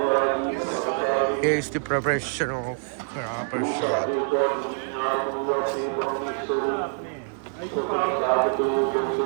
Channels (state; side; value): silent; left; digital silence